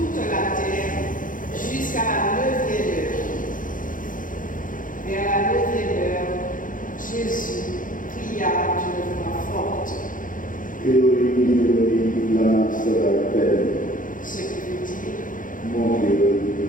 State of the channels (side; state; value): right; late; 0.39 ms